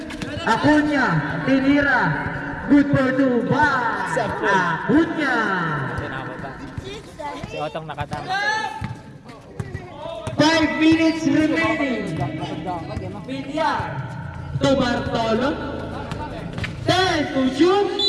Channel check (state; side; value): identical; both; correlation 1.00